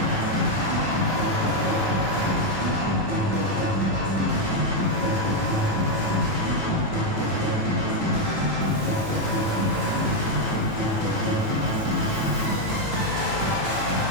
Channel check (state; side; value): late; left; 9.5 ms